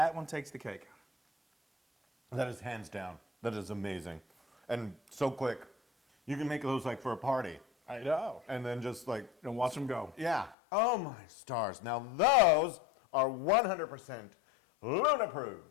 one takes the cake. That is hands down. That is amazing. And so quick. You can make those like for a party. I know. And then just like, And watch them go. yeah. Oh my stars. Now those are 100% Luna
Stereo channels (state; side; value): drops out; right; at 10.6 s